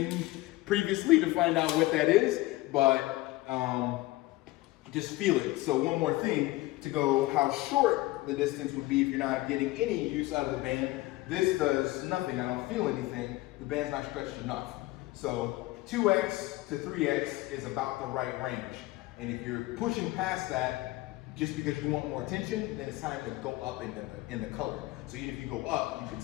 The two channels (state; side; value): quieter; right; 19.0 dB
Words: previously to find out what that is, but just feel it. So one more thing to go how short the distance would be if you're not getting any use out of the band. This does nothing, I don't feel anything. The band's not stretched enough. So 2x to 3x is about the right range. And if you're pushing past that, just because you want more attention, then it's time to go up in the color. So even if you go up, you can